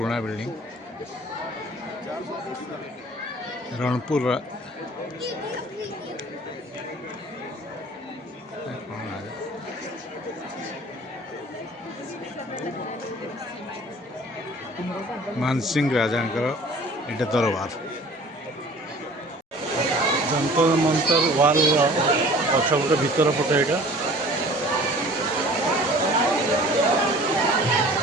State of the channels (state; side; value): normal; both; correlation 0.48